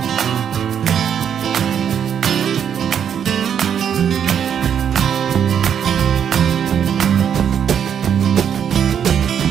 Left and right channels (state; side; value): quieter; left; 8.4 dB